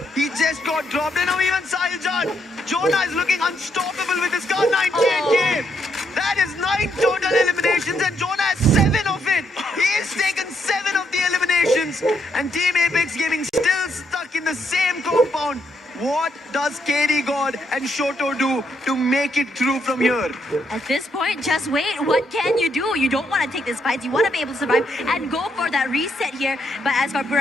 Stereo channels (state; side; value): normal; both; correlation 0.76